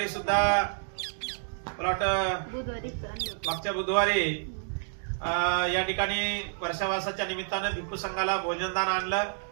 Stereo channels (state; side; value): silent; left; digital silence